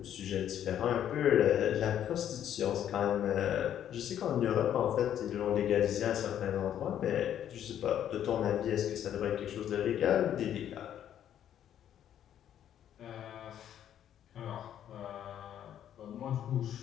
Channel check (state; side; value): quieter; right; 10.3 dB